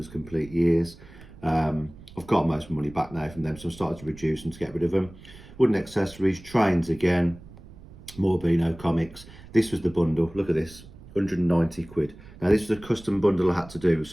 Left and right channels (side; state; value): right; noise; rumble, 19 dB below the sound